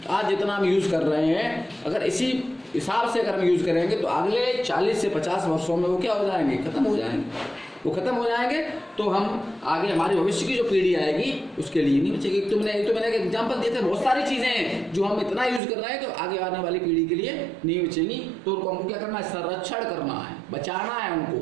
आज जितना हम यूज़ कर रहे हैं, अगर इसी हिसाब से अगर हम यूज़ करेंगे तो अगले 40 से 50 वर्षों में वो क्या हो जाएंगे, खत्म हो जाएंगे। वो खत्म हो जाएंगे तो हम आगे हमारी भविष्य की जो पीढ़ी आएगी उसके लिए नहीं बचेगी। तो मैंने एक एग्जांपल दिए थे, बहुत सारी चीज़ें हैं जो हम इतना यूज़ कर रहे हैं तो आगे आने वाली पीढ़ी के लिए नहीं बचेंगी। तो उनको हमको क्या करना है, संरक्षण करना है, बचाना है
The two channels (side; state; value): left; drops out; at 15.6 s